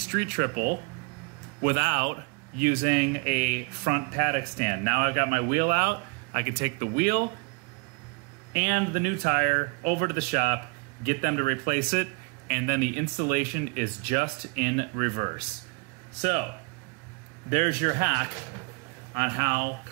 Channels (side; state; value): left; quieter; 30.6 dB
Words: triple without using a front paddock stand. Now I've got my wheel out, I can take the wheel and the new tire over to the shop, get them to replace it, and then the installation is just in reverse. So there's your hack on how